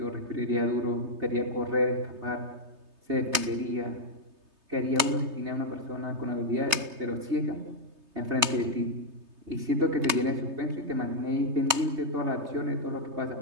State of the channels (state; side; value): late; left; 3.3 ms